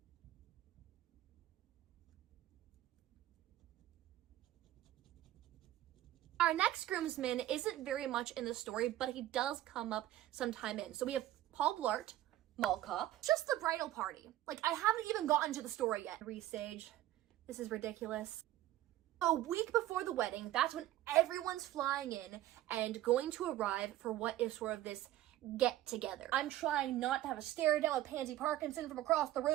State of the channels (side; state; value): left; quieter; 14.3 dB